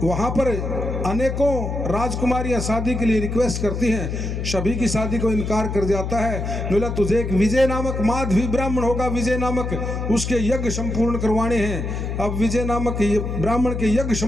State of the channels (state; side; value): noise; left; hum, 3 dB below the sound